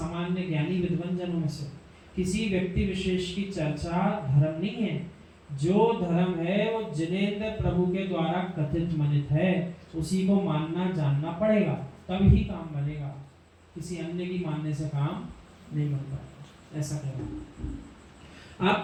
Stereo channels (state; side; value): identical; both; correlation 1.00